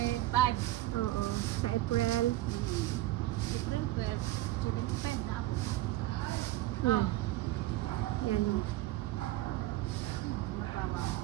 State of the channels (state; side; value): quieter; left; 16.7 dB